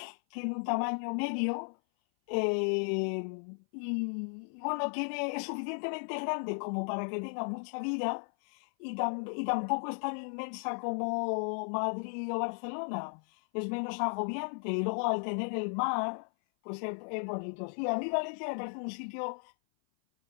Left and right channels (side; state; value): right; silent; 54 dB below the other